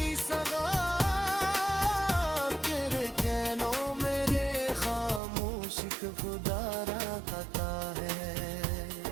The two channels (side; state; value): left; drops out; at 5.2 s